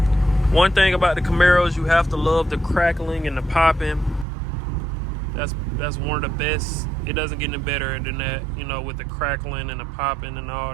One thing about the Camaros, you have to love the crackling and the popping. That's one of the best. It doesn't get any better than that, you know, with the crackling and the popping and all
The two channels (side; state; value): left; drops out; at 4.2 s